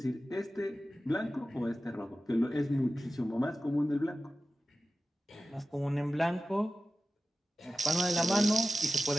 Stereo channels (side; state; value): both; normal; correlation 0.94